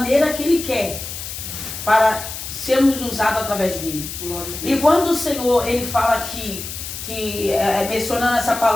que Ele quer, para sermos usados através dele. E quando o Senhor, ele fala aqui, mencionando essa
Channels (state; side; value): noise; left; hiss, 8 dB below the sound